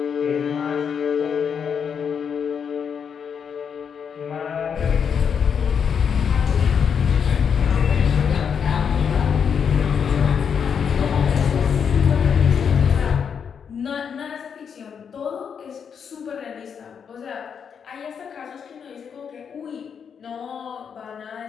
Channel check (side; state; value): right; quieter; 7.1 dB